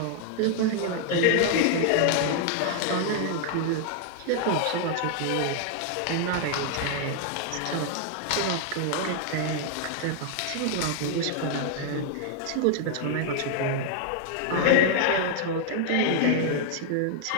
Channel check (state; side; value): different; both; correlation 0.00